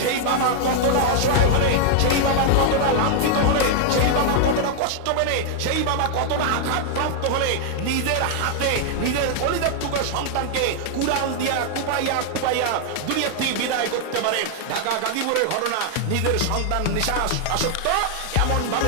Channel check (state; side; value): different; both; correlation -0.01